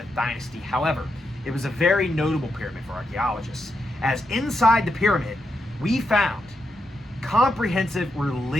dynasty. However, it was a very notable pyramid for archaeologists, as inside the pyramid, we found comprehensive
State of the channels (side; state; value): both; normal; correlation 0.84